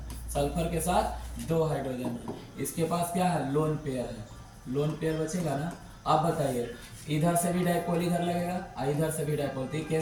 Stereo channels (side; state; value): both; identical; correlation 1.00